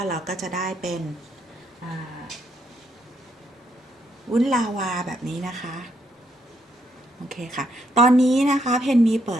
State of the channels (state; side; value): normal; both; correlation 0.75